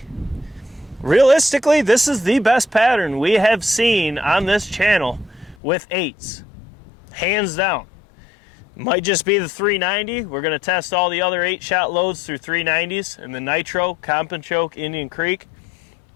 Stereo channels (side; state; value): right; drops out; at 5.6 s